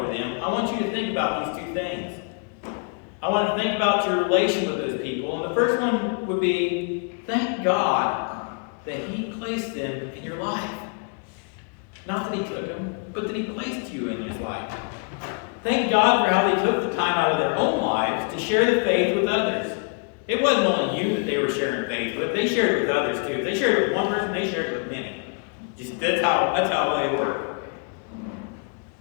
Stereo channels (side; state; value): right; quieter; 39.5 dB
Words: them, I want you to think about these two things. I want to think about your relation with those people. And the first one would be, thank God that he placed them in your life. Not that he took them, but that he placed you in his life. Thank God for how they took the time out of their own lives to share the faith with others. It wasn't only you that they were sharing faith with. They shared it with others too. If they shared it with one person, they shared it with many. That's how they work.